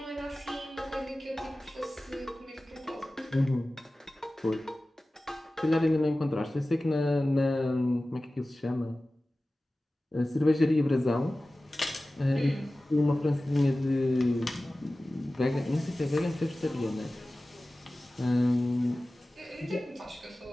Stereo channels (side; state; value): both; normal; correlation 0.96